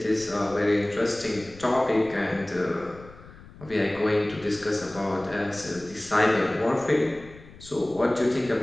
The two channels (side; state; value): left; noise; rumble, 20 dB below the sound